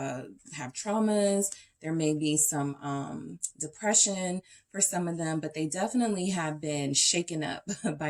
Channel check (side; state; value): both; identical; correlation 1.00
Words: traumas. There may be some depression for some of them, but they definitely have been shaken up